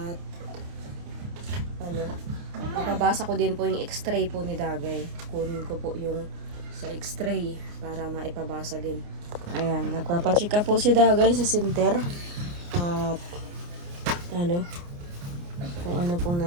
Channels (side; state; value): left; late; 29 ms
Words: ano, mapabasa ko din po yung x-ray po ni Dagay. Kunin ko po yung sa x-ray para maipabasa din. Ayan, nagpapachika po si Dagay sa center. At ano, kung ano pong